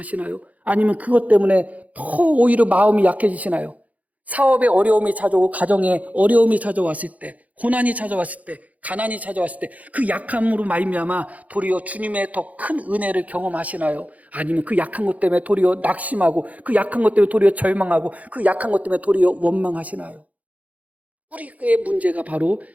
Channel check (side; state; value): left; late; 0.072 ms